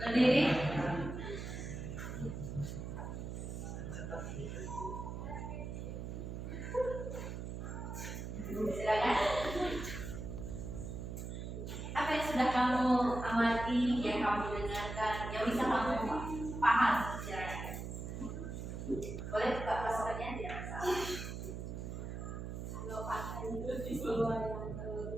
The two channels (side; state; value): right; noise; hum, 6 dB below the sound